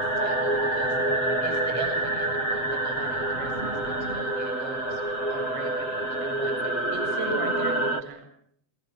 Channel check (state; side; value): late; right; 7.7 ms